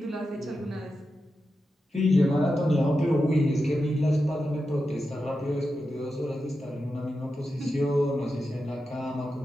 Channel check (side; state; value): both; normal; correlation 0.90